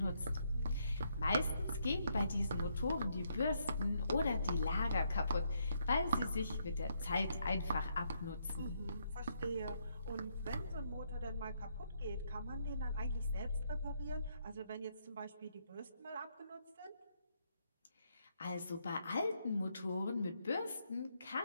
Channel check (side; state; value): both; inverted; correlation -0.75